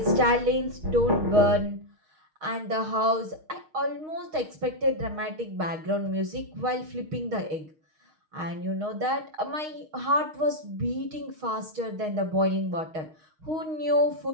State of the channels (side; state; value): left; late; 6.4 ms